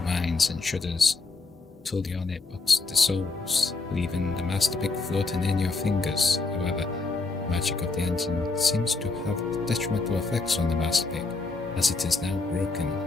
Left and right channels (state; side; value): quieter; right; 3.8 dB